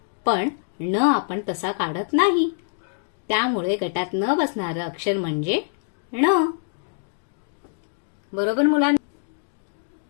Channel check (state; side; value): silent; right; digital silence